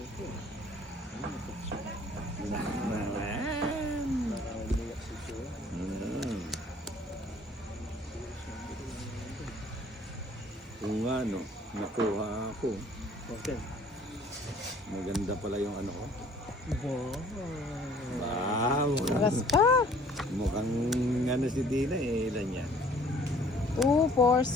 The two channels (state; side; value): normal; both; correlation 0.55